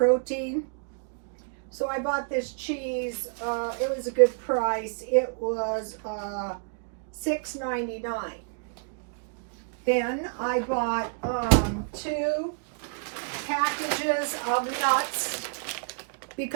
So I bought this cheese. It was a good price. It was $6.99. Then I bought 2 packages of nuts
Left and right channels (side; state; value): left; silent; digital silence